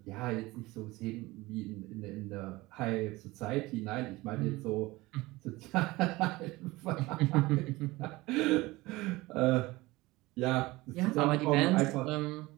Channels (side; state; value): left; quieter; 20.4 dB